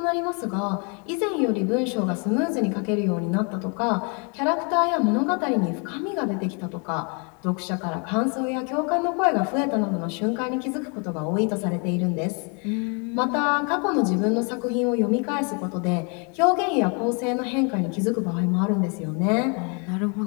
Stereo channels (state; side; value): quieter; right; 35.6 dB